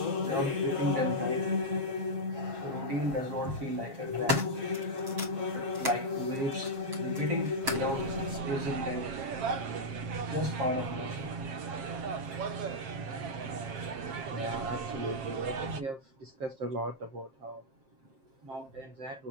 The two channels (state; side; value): late; left; 7.5 ms